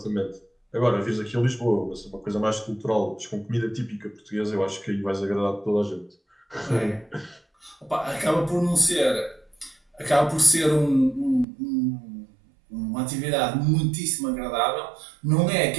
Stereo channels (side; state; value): left; drops out; at 11.5 s